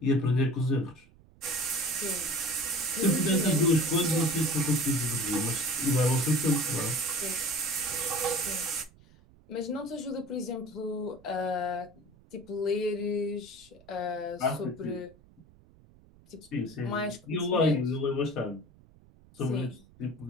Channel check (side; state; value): right; noise; rumble, 26 dB below the sound